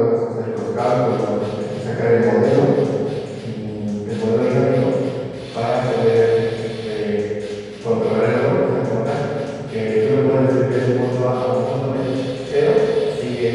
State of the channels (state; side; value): identical; both; correlation 1.00